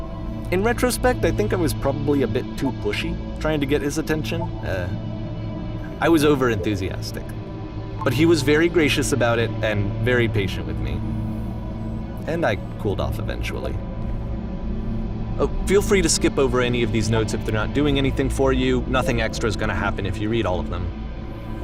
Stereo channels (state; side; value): identical; both; correlation 1.00